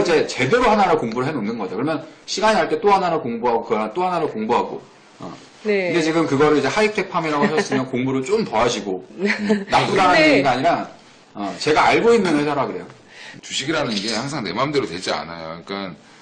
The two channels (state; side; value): identical; both; correlation 1.00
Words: 이제 제대로 하나를 공부를 해놓는 거죠. 그러면 시간이 날 때 또 하나를 공부하고 그 하나 또 하나를 공부하고. 네. 근데 지금 그거를 이제 하이텍 팜이라고 하셨으면 공부를 좀 더 하시고, 나쁘다는 네. 얘기가 아니라 제가 알고 있는 회사라 그래요. 주식이라는 게 항상 내 마음대로 되지 않아요. 그러니까